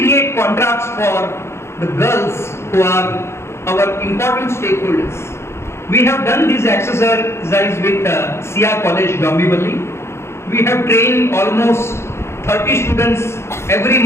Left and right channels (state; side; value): late; right; 0.13 ms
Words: contracts for the girls who are our important stakeholders? We have done this exercise with Sia College, Bhiwandi. We have trained almost 30 students every